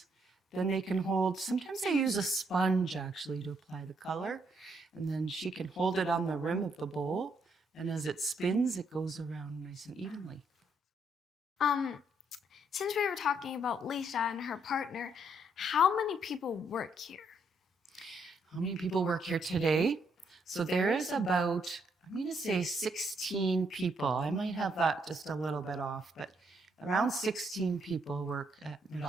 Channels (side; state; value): both; normal; correlation 0.73